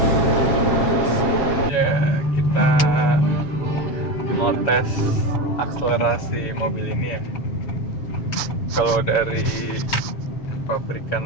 Ya, kita mau tes akselerasi mobil ini ya. Kalau dari pabrikan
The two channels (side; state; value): right; late; 7.2 ms